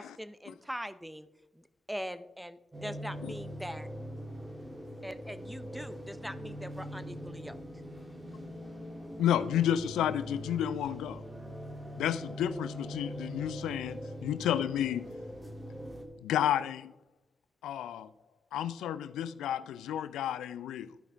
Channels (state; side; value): quieter; right; 7.5 dB